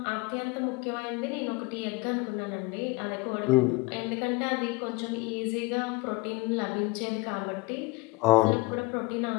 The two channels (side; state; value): right; quieter; 23.4 dB